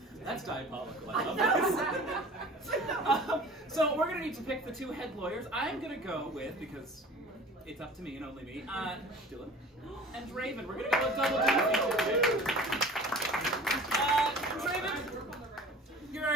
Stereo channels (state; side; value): normal; both; correlation 0.43